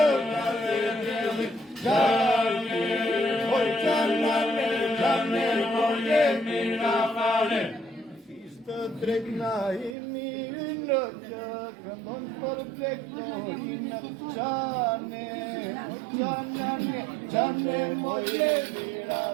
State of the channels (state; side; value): drops out; left; at 10.0 s